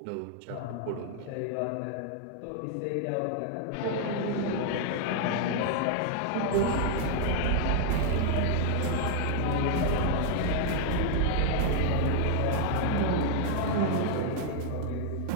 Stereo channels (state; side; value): different; both; correlation 0.00